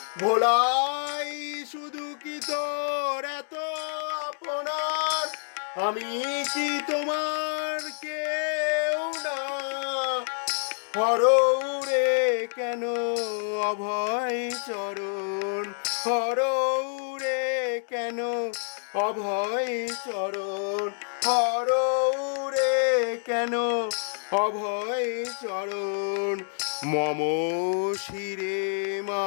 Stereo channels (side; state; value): right; silent; 60 dB below the other